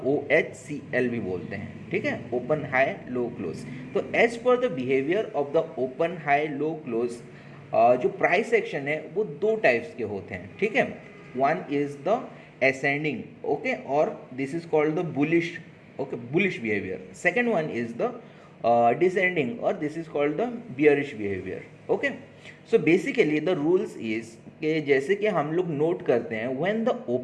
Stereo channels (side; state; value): both; identical; correlation 1.00